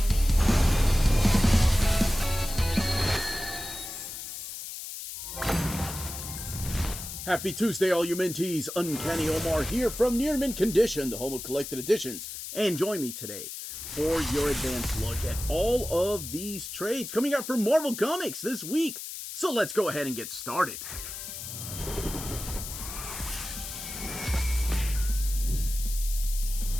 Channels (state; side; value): noise; left; hiss, 8 dB below the sound